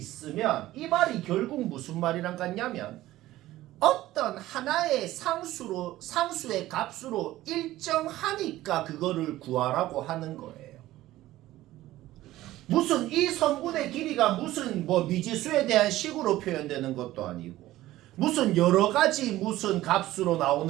이 말이 결국 무슨 말이랑 같냐면 어떤 하나의 상수의 값으로 일정하니까 그거를 구하라고 하는 거예요. 무슨 이 성분의 길이가 무슨 뭐 미지수에 대한 식으로 표현되는 것도 아니고 무슨 여러 가지 무슨 값으로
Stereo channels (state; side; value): quieter; left; 15.7 dB